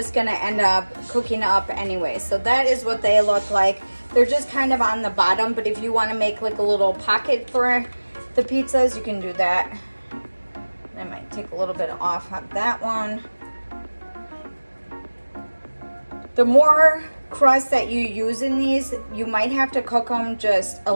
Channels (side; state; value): both; inverted; correlation -1.00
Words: gonna end up cooking up anyway. So that is what they look like. They're just kind of on the bottom, but if you wanna make like a little pocket for the pizzas, you can do that. I might take a little bit off of that one. The more crust that you use in these, you might have to cook them just a